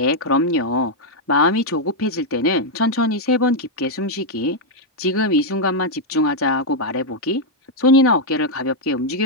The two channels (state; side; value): normal; both; correlation -0.02